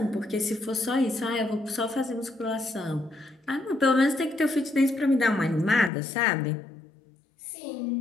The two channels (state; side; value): drops out; right; at 5.9 s